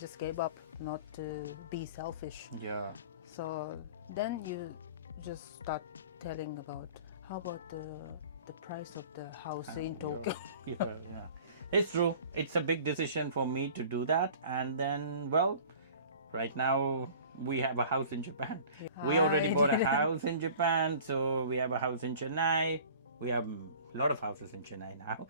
gave up not to be selfish. yeah, So then you just start telling about how about the price of the house in Tokyo. yeah. It's true. It's a big decision for me to do that. And then, well, right now we have a house in Japan. We already bought a house in Japan, so we have a house in Chennai. We have a lot of houses in Chennai now.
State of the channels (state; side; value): inverted; both; correlation -0.45